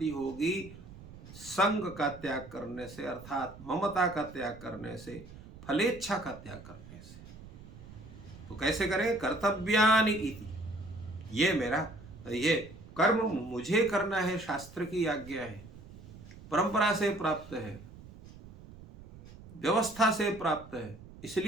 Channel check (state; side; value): noise; right; rumble, 17 dB below the sound